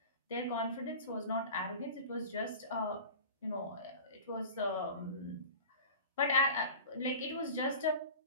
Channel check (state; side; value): inverted; both; correlation -0.37